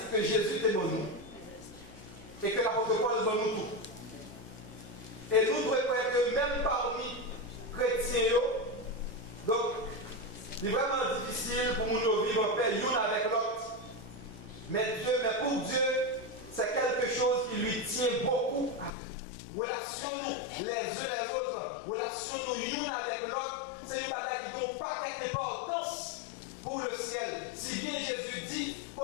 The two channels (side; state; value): right; drops out; at 18.9 s